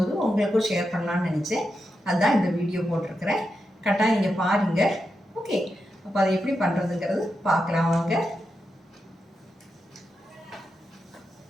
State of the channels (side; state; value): both; normal; correlation 0.87